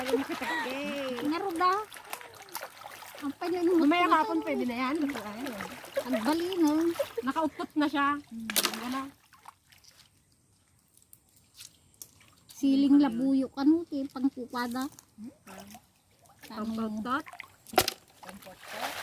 makatakde. Naruda. Ang panyo nung Mamaya kapon pwede na yan. ang bali no. Nakaupot na siya. Wala. Siling labuyo kanu ti pangkupada. Pampautot. Pampot.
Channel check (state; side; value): identical; both; correlation 1.00